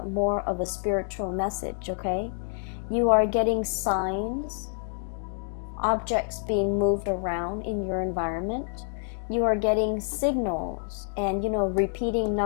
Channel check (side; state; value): right; silent; digital silence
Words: more of a spiritual message, okay? You are getting signs, objects being moved around in your environment. You are getting signals and, repeating